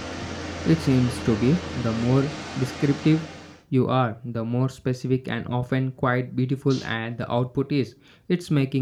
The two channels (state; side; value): identical; both; correlation 1.00